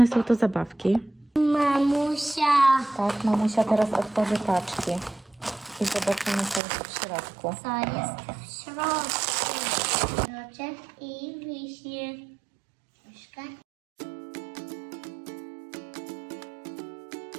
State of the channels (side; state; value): left; drops out; at 6.6 s